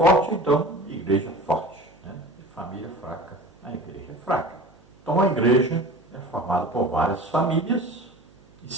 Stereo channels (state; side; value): noise; right; hum, 28 dB below the sound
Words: então, igreja forte. Né? E família fraca, a igreja é fraca. Então, a igreja é formada por várias famílias, e